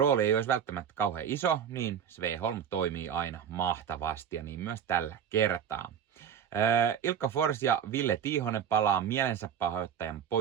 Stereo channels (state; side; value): quieter; left; 8.3 dB